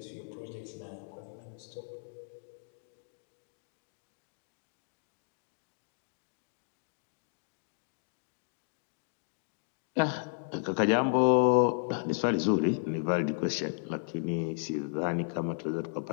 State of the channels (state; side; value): silent; right; digital silence